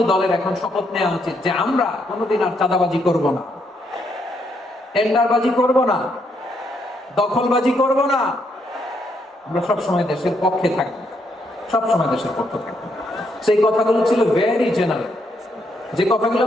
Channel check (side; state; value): both; normal; correlation 0.75